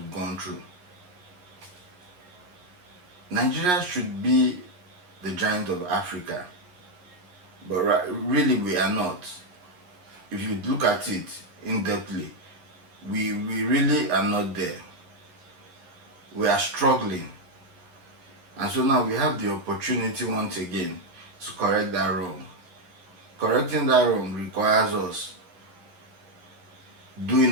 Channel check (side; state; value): left; late; 11 ms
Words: gone through. Nigeria should be the giant of Africa, but really we are not. If you look at it in-depthly, we really are not there. We are struggling. And so now we have the opportunity once again to correct that wrong. Correcting that wrong requires us